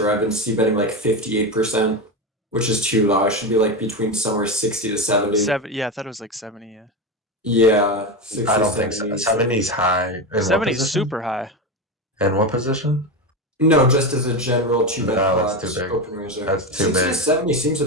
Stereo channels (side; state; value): both; normal; correlation 0.17